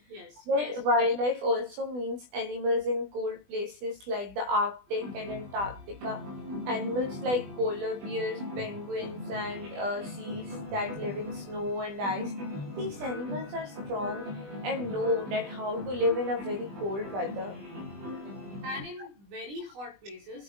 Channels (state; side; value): late; left; 20 ms